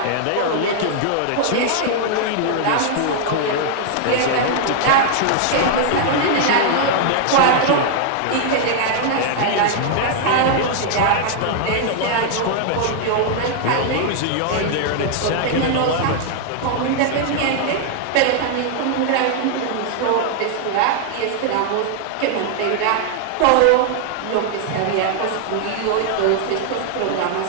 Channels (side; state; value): both; different; correlation 0.00